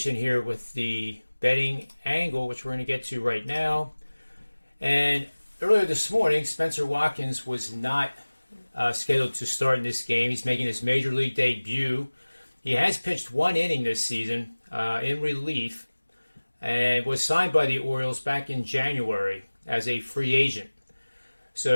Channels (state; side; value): inverted; both; correlation -1.00